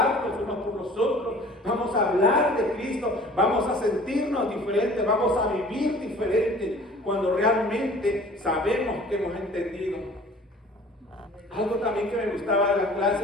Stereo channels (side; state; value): both; normal; correlation 0.48